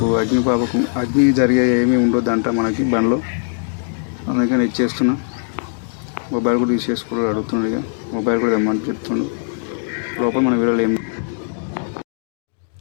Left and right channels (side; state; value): right; silent; digital silence